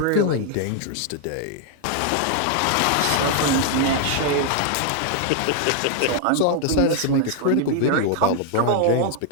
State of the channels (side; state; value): both; different; correlation 0.00